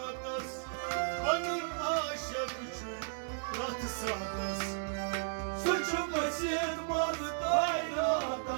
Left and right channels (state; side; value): silent; left; digital silence